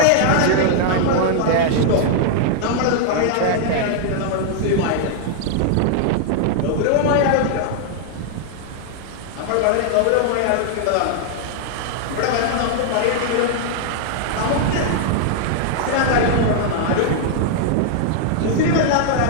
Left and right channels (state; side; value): different; both; correlation -0.01